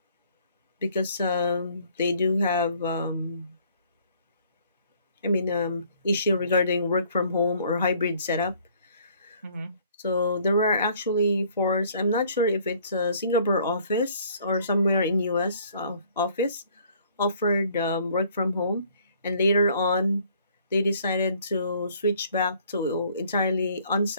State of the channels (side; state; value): both; inverted; correlation -0.59